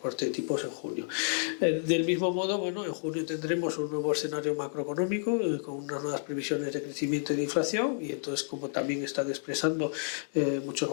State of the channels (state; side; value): silent; right; digital silence